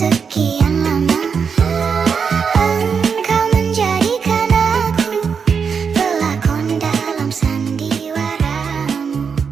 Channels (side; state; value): left; quieter; 6.2 dB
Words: lama? Engkau menjadikan aku pelakon dalam sandiwaramu.